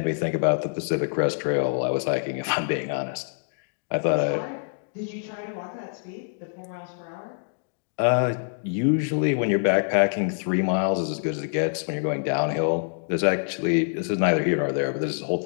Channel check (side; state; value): right; silent; digital silence